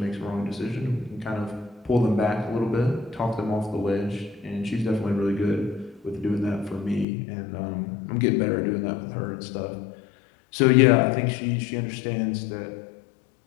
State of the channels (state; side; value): drops out; right; at 7.1 s